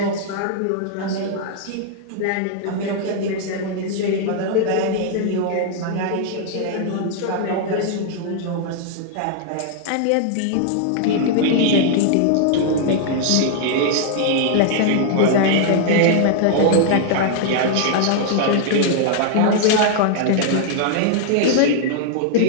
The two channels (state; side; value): different; both; correlation 0.00